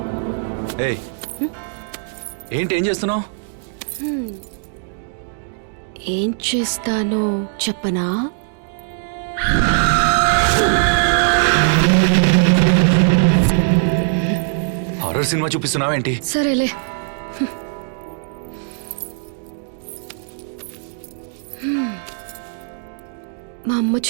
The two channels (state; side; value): silent; left; digital silence